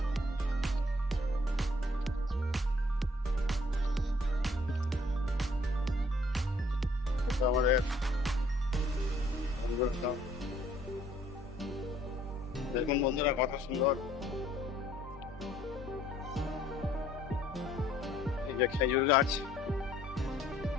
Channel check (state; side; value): normal; both; correlation 0.61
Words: আমাদের দেখুন বন্ধুরা কত সুন্দর এই যে খেজুর গাছ।